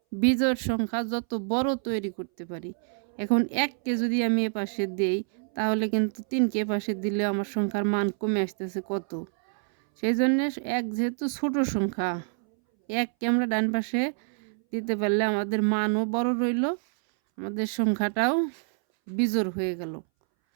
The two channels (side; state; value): left; silent; 60 dB below the other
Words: বিজোড় সংখ্যা যত বড় তৈরি করতে পারি। এখন 1কে যদি আমি এ পাশে দেই তাহলে কিন্তু 3কে পাশে দিলে আমার সংখ্যার মান কমে আসতেছে কত। সেই জন্য 1 যেহেতু ছোট সংখ্যা, 1কে আমরা ডান পাশে দিতে পারলে আমাদের মানও বড় রইল, আমাদের সংখ্যাটাও বিজোড় হয়ে গেল।